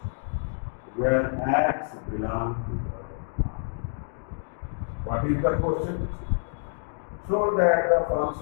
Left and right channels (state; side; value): silent; right; digital silence